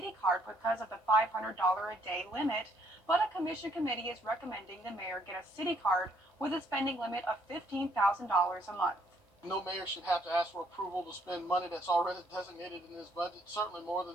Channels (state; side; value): normal; both; correlation 0.67